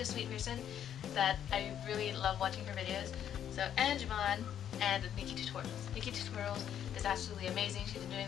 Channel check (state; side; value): quieter; right; 9.7 dB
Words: a sweet person that I really love watching her videos. So, and Vaughn, and Nikki Tutorials. Nikki Tutorials is absolutely amazing. She's been